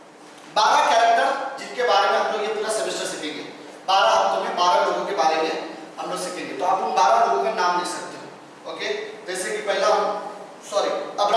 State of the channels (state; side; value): identical; both; correlation 1.00